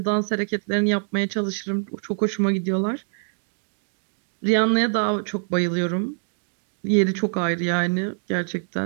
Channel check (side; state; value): left; silent; digital silence